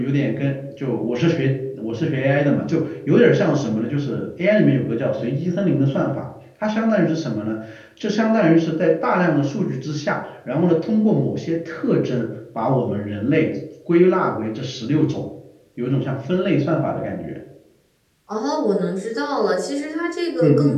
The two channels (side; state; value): both; identical; correlation 1.00